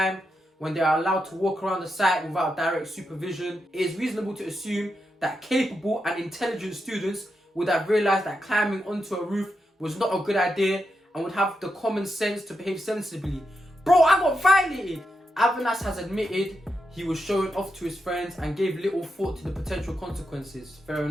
when they are allowed to walk around the site without direct supervision. It is reasonable to assume that capable and intelligent students would have realised that climbing onto a roof was not a good idea and would have the common sense to behave sensibly. Bro, I got violated! Avanas has admitted he was showing off to his friends and gave little thought to the potential consequences. Fair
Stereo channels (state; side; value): normal; both; correlation 0.86